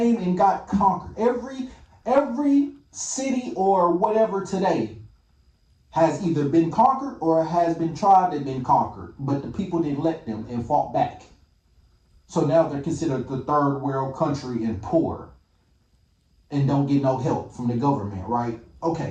and got conquered. Every city or whatever today has either been conquered or has been tried and been conquered, but the people didn't let them and fought back. So now they're considered the third world country and poor, and don't get no help from the government, right?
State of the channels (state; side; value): identical; both; correlation 1.00